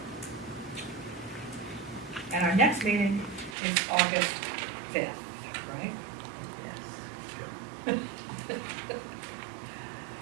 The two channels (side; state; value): left; drops out; at 3.6 s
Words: And our next meeting is August 5th, right? Yes.